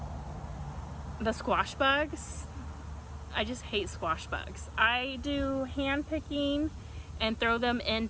the squash bugs. I just hate squash bugs. I do hand picking and throw them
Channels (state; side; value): identical; both; correlation 1.00